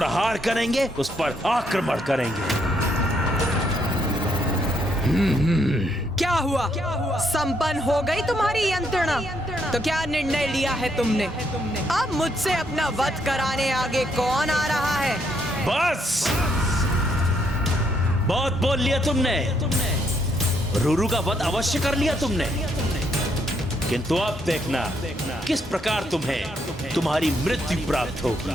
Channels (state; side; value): normal; both; correlation 0.74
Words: करेंगे, उस पर आक्रमण करेंगे। क्या हुआ? संपन्न हो गई तुम्हारी यंत्रणा? तो क्या निर्णय लिया है तुमने? अब मुझसे अपना वध कराने आगे कौन आ रहा है? बस बहुत बोल लिया तुमने। रूरू का वध अवश्य कर लिया तुमने, किंतु अब देखना किस प्रकार तुम्हें तुम्हारी मृत्यु प्राप्त